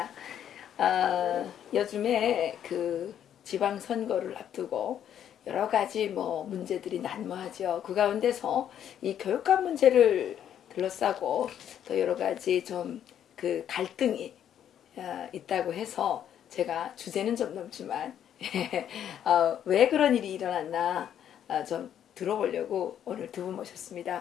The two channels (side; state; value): right; quieter; 9.8 dB